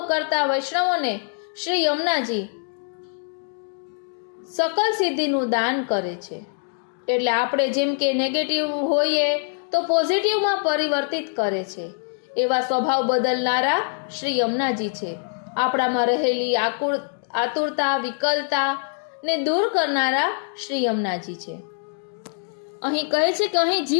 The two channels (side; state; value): right; silent; 63 dB below the other